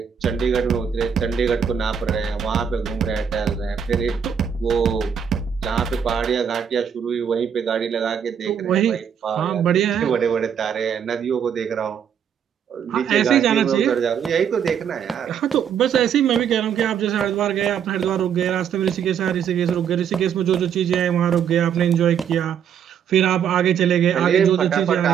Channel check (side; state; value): left; quieter; 8.0 dB